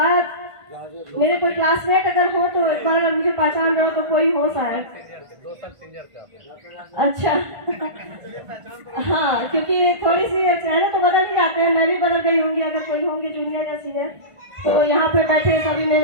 मेरे कोई क्लासमेट अगर हो तो एक बार अगर मुझे पहचान रहे हो तो कोई हो शायद। अच्छा हाँ, क्योंकि थोड़ी सी चेहरे तो बदल ही जाते हैं। मैं भी बदल गई होंगी अगर कोई होंगे जूनियर या सीनियर। तो यहाँ पे बैठे सभी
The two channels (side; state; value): left; late; 1.5 ms